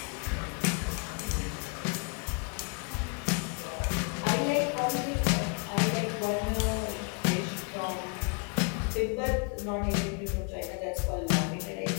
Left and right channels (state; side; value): quieter; right; 37.7 dB